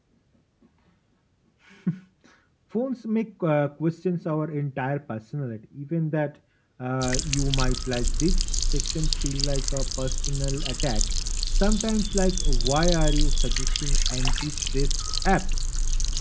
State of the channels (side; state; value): both; identical; correlation 1.00